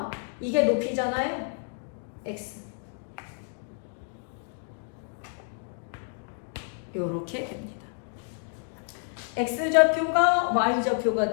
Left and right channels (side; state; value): right; silent; 59 dB below the other